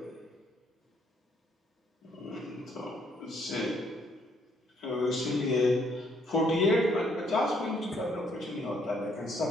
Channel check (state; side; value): normal; both; correlation 0.68